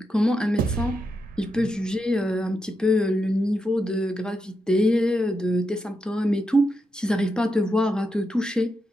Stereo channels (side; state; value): both; normal; correlation 0.85